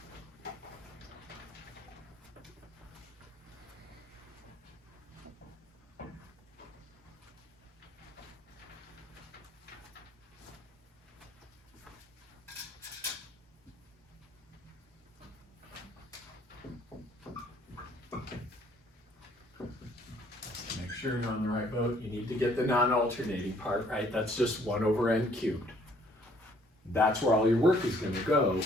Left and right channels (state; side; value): normal; both; correlation 0.62